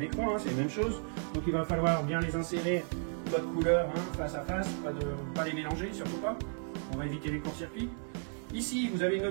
écran, c'est la même chose. Donc il va falloir bien les insérer, votre couleur face à face, pas les mélanger, surtout pas. On va éviter les courts-circuits. Ici vous avez une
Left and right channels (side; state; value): left; silent; 55 dB below the other